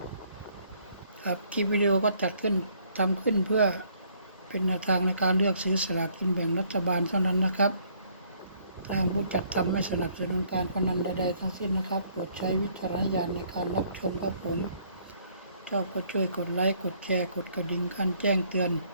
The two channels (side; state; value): both; inverted; correlation -0.64